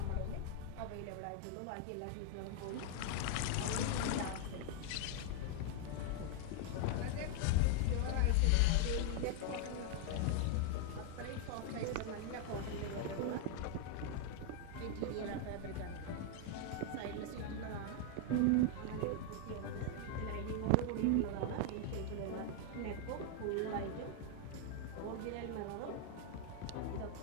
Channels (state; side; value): different; both; correlation 0.00